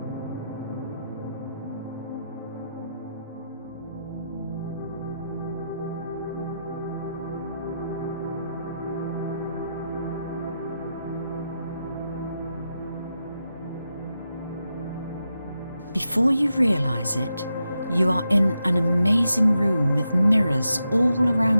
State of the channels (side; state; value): both; inverted; correlation -0.86